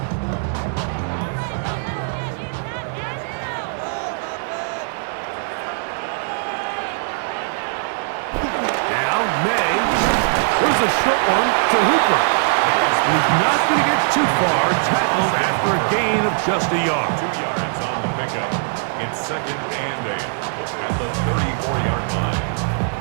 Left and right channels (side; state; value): left; silent; 57 dB below the other